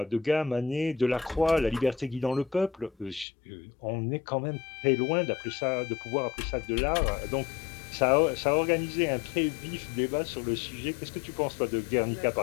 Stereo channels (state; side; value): drops out; right; at 3.2 s